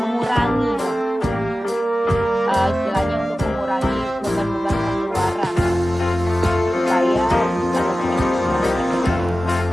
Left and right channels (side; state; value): both; normal; correlation 0.95